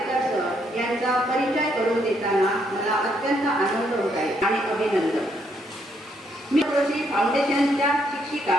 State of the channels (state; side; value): normal; both; correlation 0.73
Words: सर यांचा परिचय करून देताना मला अत्यंत आनंद होत आहे आणि अभिनंदन. मी जोशी फाउंडेशनच्या शिक्षिका